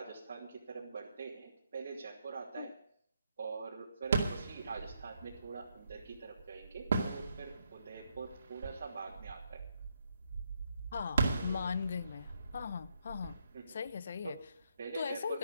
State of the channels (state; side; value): inverted; both; correlation -0.78